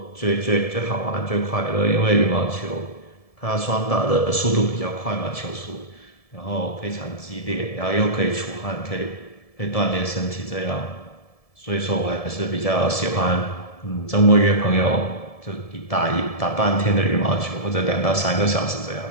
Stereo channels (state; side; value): late; right; 1.7 ms